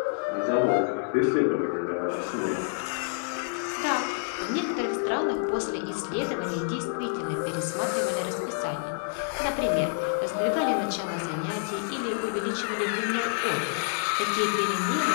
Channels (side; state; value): right; silent; digital silence